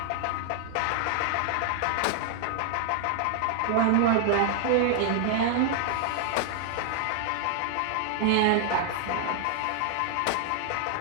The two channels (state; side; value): different; both; correlation 0.00